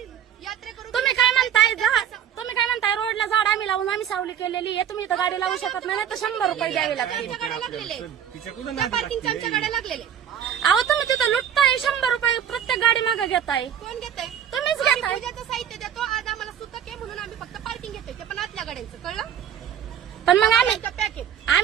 यात्रेकरू तुम्ही काय म्हणताय रोडला झाड आम्ही लावून आम्ही सावली केलेली आहे. तुम्ही इथं गाडी लावू शकत नाही तर 100 रुपये द्यावे लागतील. आमच्या गाड्या लागलेले, त्या पार्किंगच्या आमच्या गाड्या लागलेले. अहो तुम्ही तिथं लुटताय, 100 रुपये प्रत्येक गाडी मागे घेताय. कोण घेतंय? तुम्हीच आम्ही घेताय. पूजाचं साहित्य देतो. आज आम्हाला सुतक आहे म्हणून आम्ही फक्त पार्किंग घेतोय, ते पण आतल्या गाड्यांचं. कळलं? पण मग आम्ही पॅकेज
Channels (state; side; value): quieter; left; 9.3 dB